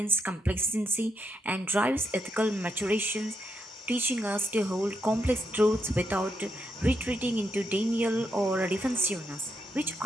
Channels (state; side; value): normal; both; correlation 0.80